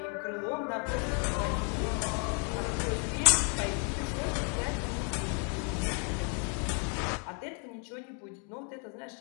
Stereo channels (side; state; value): right; quieter; 38.7 dB